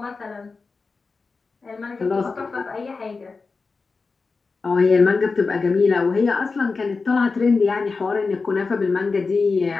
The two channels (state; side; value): quieter; right; 4.3 dB